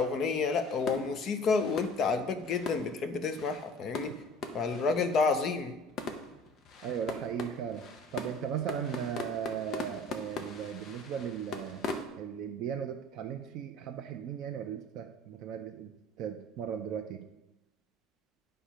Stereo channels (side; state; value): both; normal; correlation 0.46